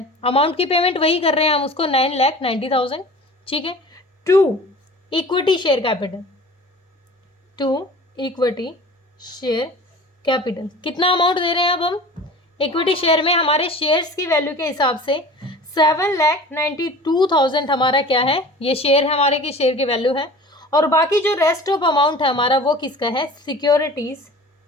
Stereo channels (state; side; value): normal; both; correlation 0.41